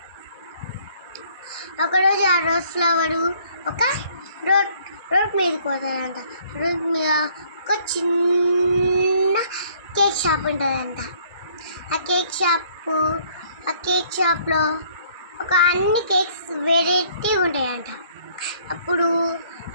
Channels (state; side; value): inverted; both; correlation -0.61